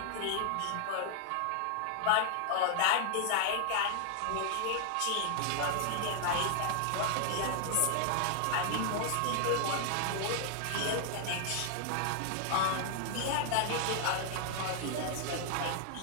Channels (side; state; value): both; different; correlation 0.00